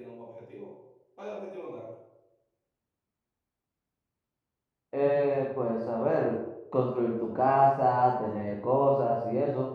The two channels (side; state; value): both; identical; correlation 1.00